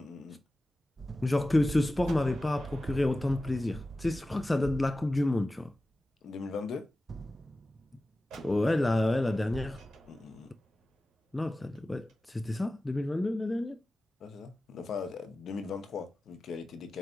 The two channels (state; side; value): normal; both; correlation 0.95